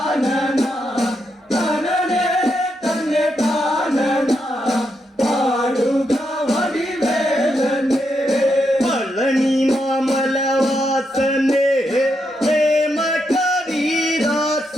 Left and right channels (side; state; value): both; normal; correlation 0.82